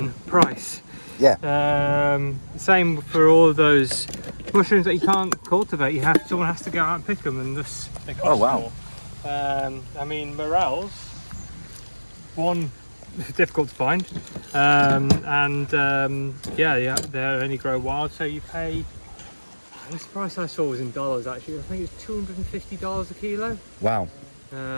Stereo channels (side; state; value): both; inverted; correlation -1.00